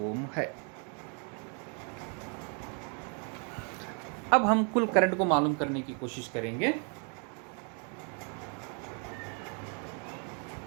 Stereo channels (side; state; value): left; quieter; 38.4 dB